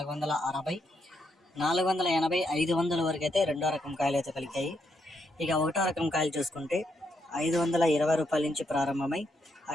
480, 500 వరకు అయితే రెండో రకం కాయలు అయితే పలికాయి. ఇక ఒకటో రకం కాయలు చూసుకుంటే 520 రూపాయల నుంచి ప్రారంభమై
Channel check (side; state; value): both; normal; correlation 0.78